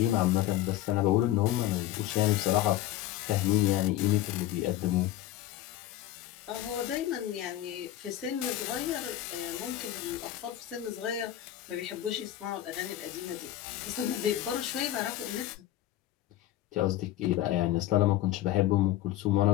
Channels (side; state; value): right; quieter; 13.5 dB